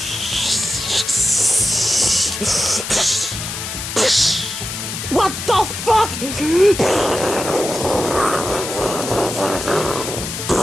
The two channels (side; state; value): left; noise; hiss, 6 dB below the sound